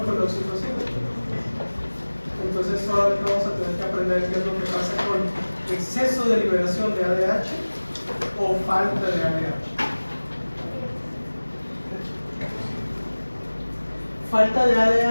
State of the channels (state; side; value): inverted; both; correlation -1.00